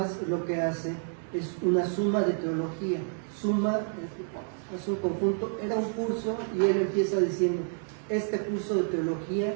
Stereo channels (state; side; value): silent; left; 58 dB below the other